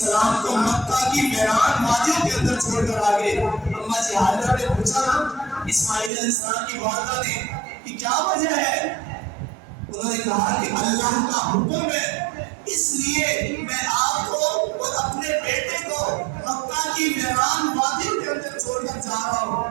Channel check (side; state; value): left; drops out; at 6.1 s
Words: کو مکہ کی ویران وادیوں کے اندر چھوڑ کر آگے۔ اما جی حاضرہ نے پوچھا نا اسماعیل علیہ السلام کی والدہ نے کہ کیا وجہ ہے؟ انہوں نے کہا کہ اللہ کا حکم ہے، اس لیے میں آپ کو اور اپنے بیٹے کو مکہ کی ویران وادیوں کے اندر چھوڑ کر جا رہا ہوں۔